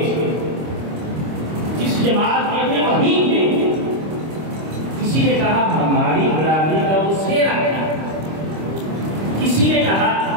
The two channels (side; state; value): left; late; 25 ms